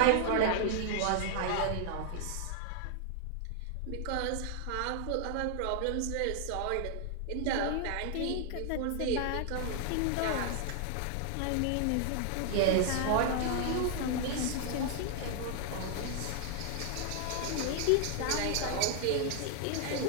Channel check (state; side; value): different; both; correlation 0.00